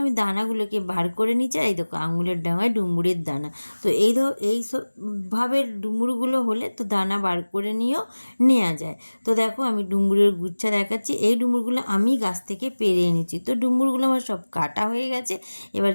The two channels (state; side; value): inverted; both; correlation -1.00